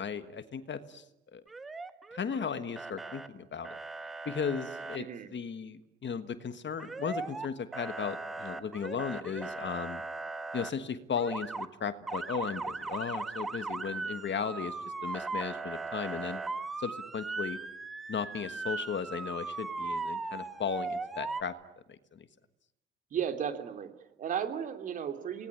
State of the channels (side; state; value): both; normal; correlation 0.37